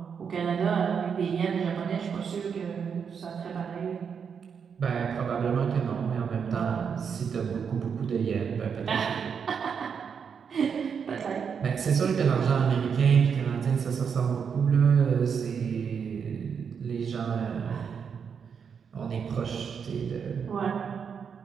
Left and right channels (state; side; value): quieter; left; 6.7 dB